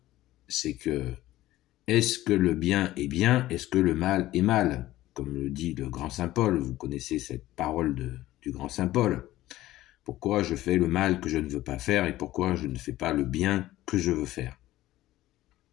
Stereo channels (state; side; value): quieter; right; 15.7 dB